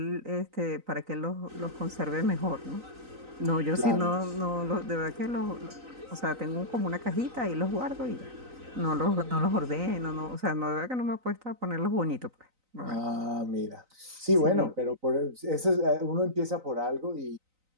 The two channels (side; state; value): left; late; 3.9 ms